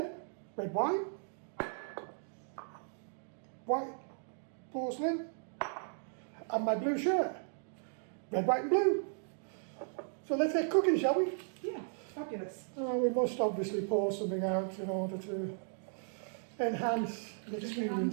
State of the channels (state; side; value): silent; left; digital silence